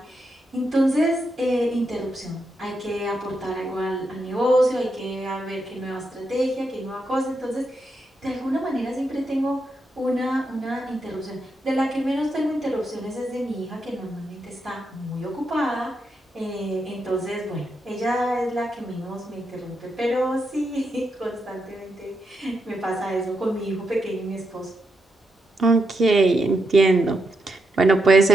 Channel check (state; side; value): normal; both; correlation 0.83